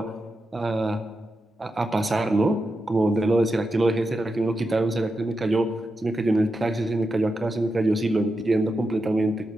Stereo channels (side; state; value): both; normal; correlation 0.88